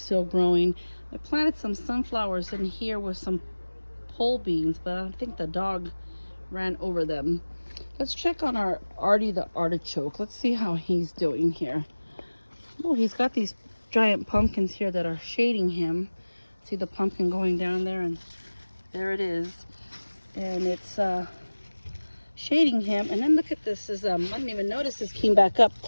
still growing. I planted some sunflowers in here with some pole beans, but I think the dog ran over them. Let's check on our Artie the artichoke. Let's see how he's doing here. Oh, he's got these giant pumpkins here that are shading him. See the pumpkin going down there, and there it is. And it's shading him. And then look at this. I didn't even notice this came back up.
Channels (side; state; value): both; inverted; correlation -1.00